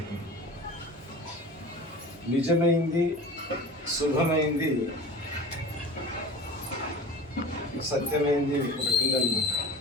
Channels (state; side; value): normal; both; correlation 0.37